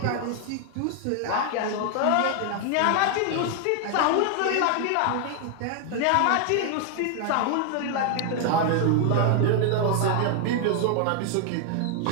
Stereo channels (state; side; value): different; both; correlation 0.00